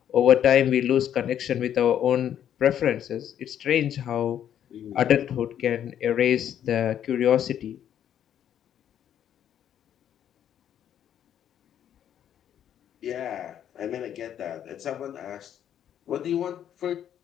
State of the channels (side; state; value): right; quieter; 10.0 dB